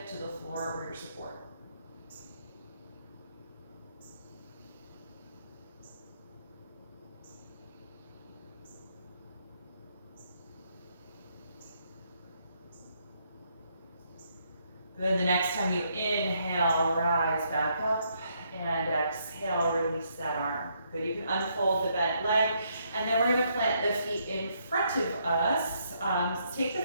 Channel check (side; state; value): both; inverted; correlation -0.74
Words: to the floor for your support. Good, the next time you inhale, rise back up, and exhale, release that arm. Good, you can unfold the bent leg, and then we're gonna plant the feet in front of us. Take the